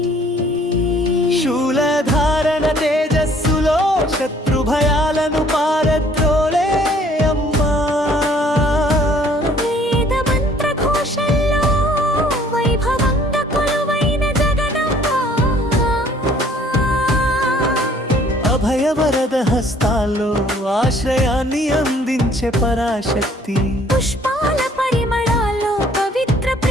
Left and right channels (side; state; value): both; normal; correlation 0.58